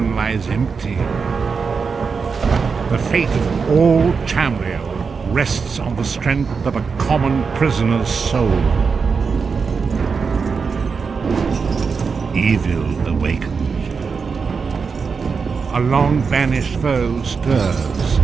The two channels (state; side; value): quieter; left; 5.3 dB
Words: lies empty, the fate of all Tamriel rests on the strength of a common prisoner's soul. Evil awakens. A long-banished foe stirs.